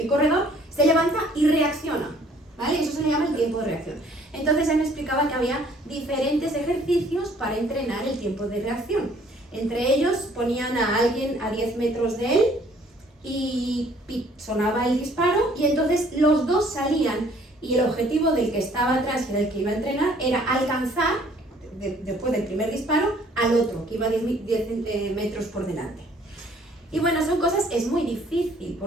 corredor, se levanta y reacciona, ¿vale? Eso se le llama el tiempo de reacción. Entonces él me explicaba que había diferentes ejercicios para entrenar el tiempo de reacción. Entre ellos ponían a alguien a 10 metros de él y sonaba el disparo y entonces los dos salían y el objetivo del que estaba atrás, que era el que iba a entrenar, era alcanzar después del primer disparo al otro, que iba 10 metros por delante. Y bueno, son cosas, es muy difícil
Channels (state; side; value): normal; both; correlation 0.59